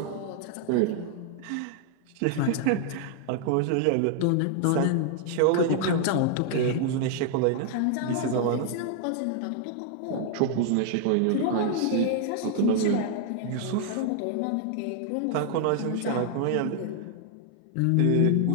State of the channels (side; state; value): both; different; correlation 0.00